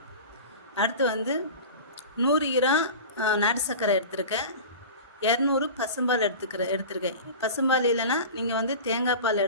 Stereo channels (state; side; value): inverted; both; correlation -0.33